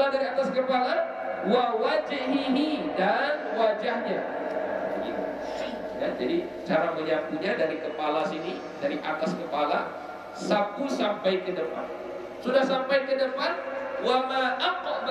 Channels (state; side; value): identical; both; correlation 1.00